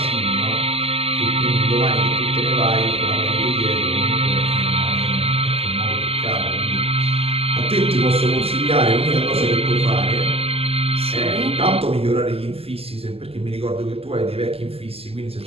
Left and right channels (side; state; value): left; late; 0.29 ms